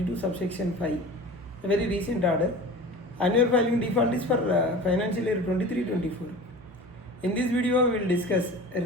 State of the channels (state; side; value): normal; both; correlation 0.37